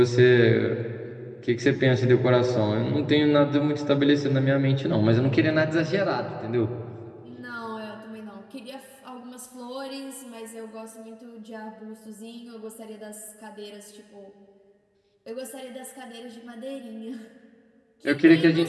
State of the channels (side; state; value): both; identical; correlation 1.00